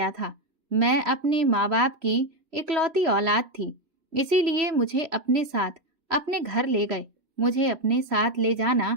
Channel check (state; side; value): late; left; 3.1 ms